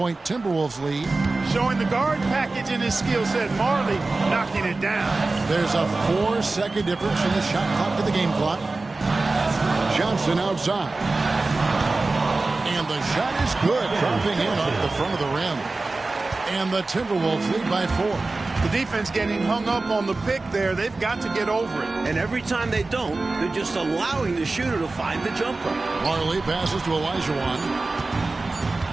Timberwolves lead. Showing the guard package in his skill set. Marley knocking it down. There's a 4-second difference from the shot clock to the game clock. Johnson outside. And the shot is good, dropping in off the front of the rim. And the Timberwolves lead by 4. The defense getting hung up on the pick there. They've got to get over it. And every time they don't, they're just allowing the shooter to find the jumper. Marley passes to Olajuwon.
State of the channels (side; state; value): left; quieter; 3.4 dB